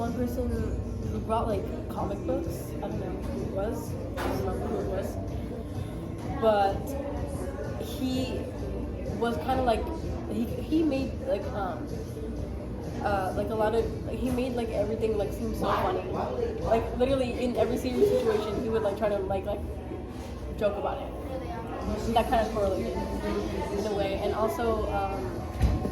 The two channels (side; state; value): both; identical; correlation 1.00